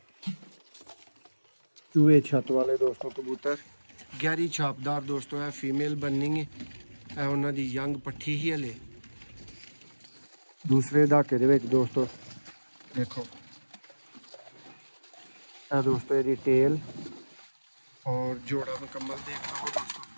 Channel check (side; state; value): both; inverted; correlation -1.00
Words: चूहे छत वाले दोस्तों कबूतर गहरी छापदार दोस्तों है फीमेल बननी है। उन्हों की यंग पट्ठी ही हले दूसरे दहाके दे विच दोस्तों देखो है दोस्तों यदि टेल और जोड़ा मुकम्मल देख लो दोस्तों